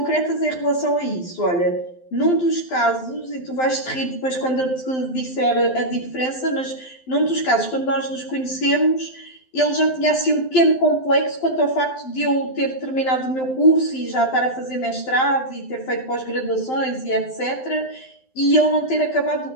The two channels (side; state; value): right; late; 12 ms